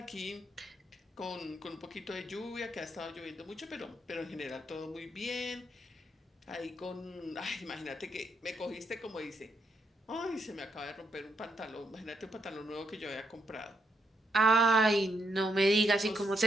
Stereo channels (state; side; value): normal; both; correlation 0.78